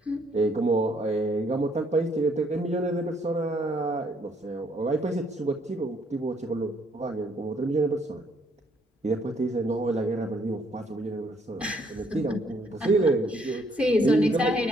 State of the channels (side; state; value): both; normal; correlation 0.68